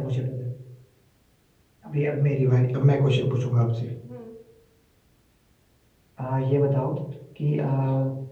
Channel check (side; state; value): both; identical; correlation 1.00